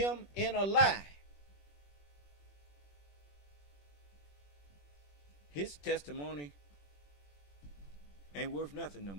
in a lie. His testimony ain't worth nothing no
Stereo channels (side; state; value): right; late; 21 ms